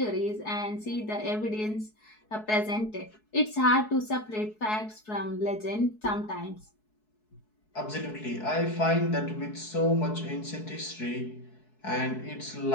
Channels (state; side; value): late; right; 4.7 ms